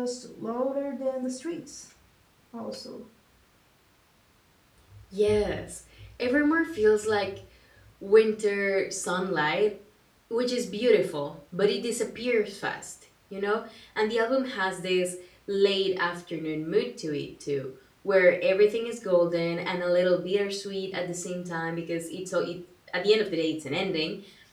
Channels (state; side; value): identical; both; correlation 1.00